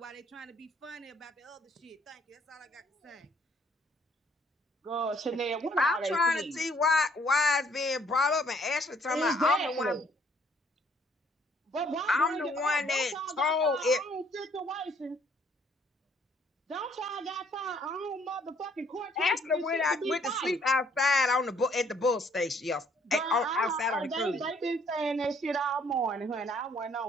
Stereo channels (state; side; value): normal; both; correlation 0.64